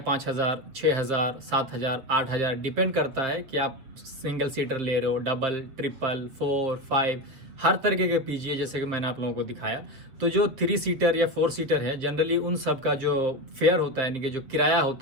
6,000, 7,000, 8,000 डिपेंड करता है कि आप सिंगल सीटर ले रहे हो, डबल, ट्रिपल, 4, 5, हर तरीके के पीजी है जैसे कि मैंने आप लोगों को दिखाया। तो जो 3 सीटर या 4 सीटर है, जनरली उन सब का जो फेयर होता है, यानी कि जो किराया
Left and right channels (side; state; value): left; late; 7.8 ms